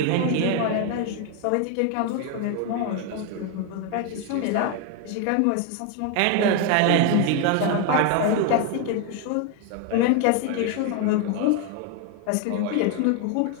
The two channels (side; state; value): both; different; correlation 0.01